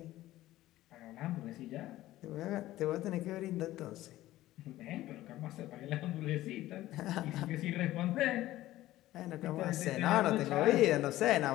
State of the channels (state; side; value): quieter; right; 15.5 dB